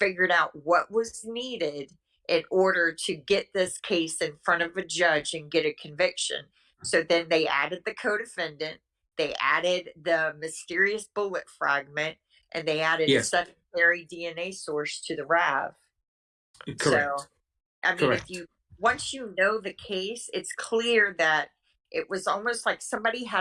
out what was needed in order to get this case in front of a judge and get a conviction. So then they added the co-defendant, they added the mysterious bullet fragment, and they added a Yes. secondary DNA source to the RAV. Correct. So, I mean, Correct. once you know the case, it's clear that it was almost like somebody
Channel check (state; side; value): identical; both; correlation 1.00